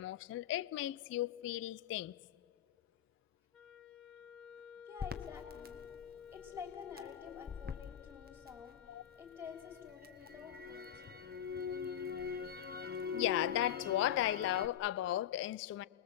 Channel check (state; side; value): quieter; right; 10.6 dB